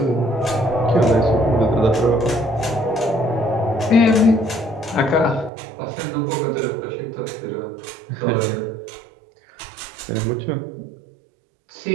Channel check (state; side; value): drops out; left; at 5.5 s